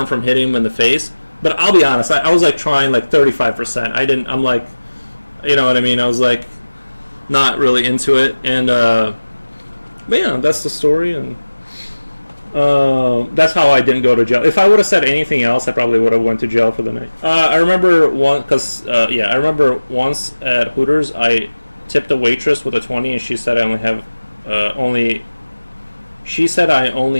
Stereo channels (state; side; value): inverted; both; correlation -1.00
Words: from hitting him in the face. But I'll be honest, I was like trying like 35%. I'm like, you know what I mean? I was like not really into it. And but yeah, that's the story, and that's how I didn't go to jail. If I would have said anything else, I probably would have went to jail for the night. I remember I remember once at Hooters, I tipped a waitress with a 20, and she said I only